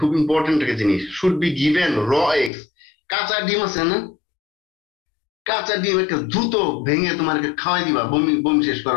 খুব ইম্পর্টেন্ট একটা জিনিস, should be given raw eggs. কাঁচা ডিম আছে না, কাঁচা ডিম একটা দ্রুত ভেঙে তোমাকে খাওয়াই দিবা বমি শেষ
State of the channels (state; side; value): drops out; right; at 2.5 s